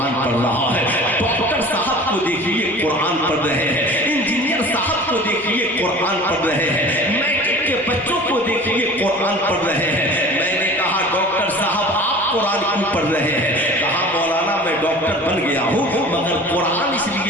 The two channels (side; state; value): both; normal; correlation 0.41